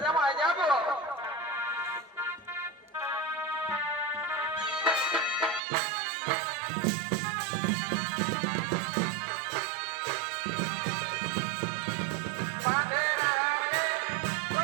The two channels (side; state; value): left; drops out; at 5.6 s